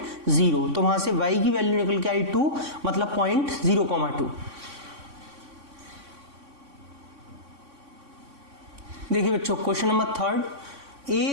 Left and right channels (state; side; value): late; left; 3.6 ms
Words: 0, तो वहां से y की वैल्यू निकल के आई 2, मतलब पॉइंट 0,2। देखिए बच्चों, question number 3,